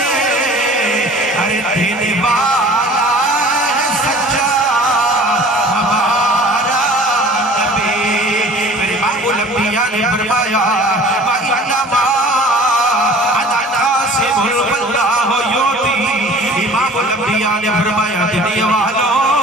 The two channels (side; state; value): both; normal; correlation 0.46